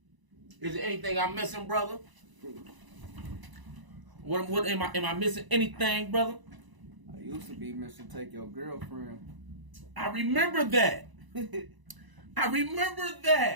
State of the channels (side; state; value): left; late; 1.0 ms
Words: Is there anything I'm missing, brother? What am I missing anything, brother? I used to be Mr. Take Your Girlfriend. I remember that. I remember